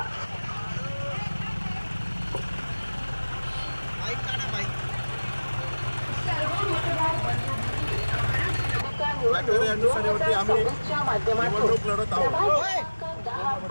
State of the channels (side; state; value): both; inverted; correlation -1.00